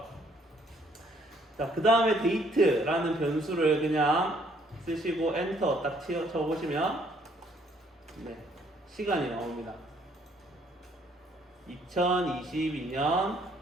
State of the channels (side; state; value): both; normal; correlation 0.65